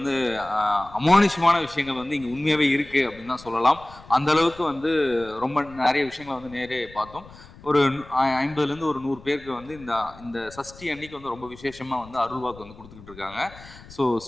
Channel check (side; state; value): left; noise; rumble, 20 dB below the sound